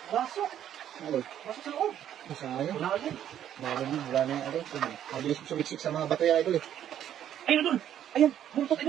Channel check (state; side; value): quieter; left; 10.6 dB